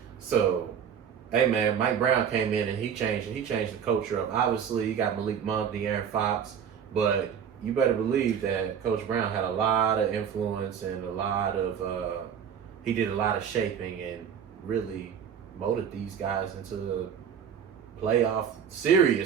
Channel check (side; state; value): left; quieter; 7.9 dB